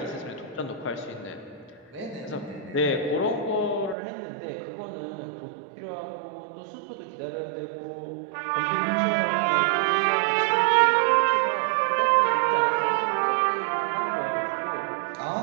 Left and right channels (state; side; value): drops out; left; at 4.0 s